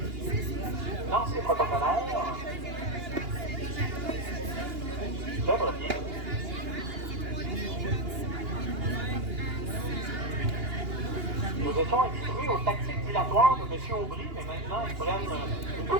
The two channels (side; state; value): left; late; 2.8 ms